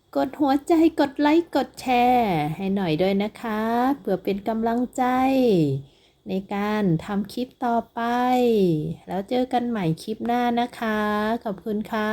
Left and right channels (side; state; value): both; identical; correlation 1.00